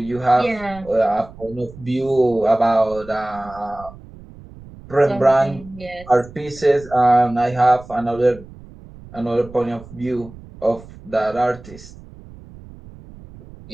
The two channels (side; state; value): right; noise; rumble, 19 dB below the sound